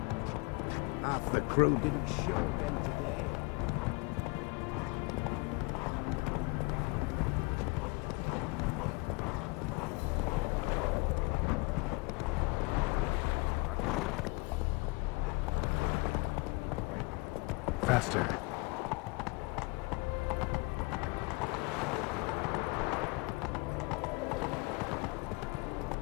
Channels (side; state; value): right; quieter; 27.6 dB